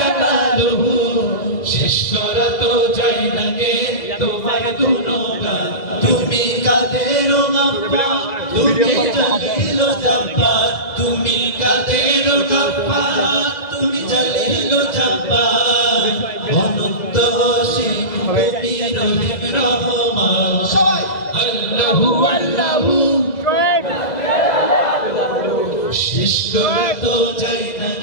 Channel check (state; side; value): late; right; 2.0 ms